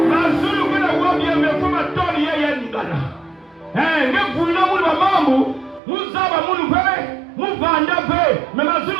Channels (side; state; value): left; drops out; at 5.8 s